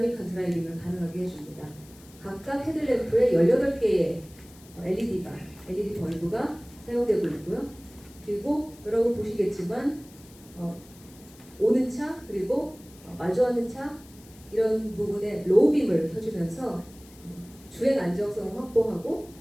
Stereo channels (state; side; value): noise; left; hiss, 24 dB below the sound